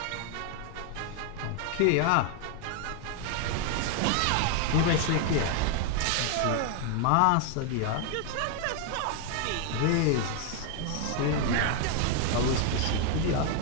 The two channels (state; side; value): different; both; correlation 0.00